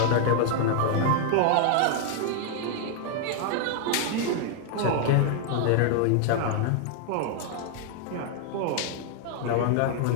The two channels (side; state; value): both; different; correlation 0.00